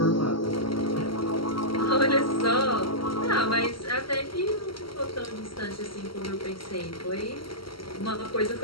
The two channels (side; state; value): right; late; 0.74 ms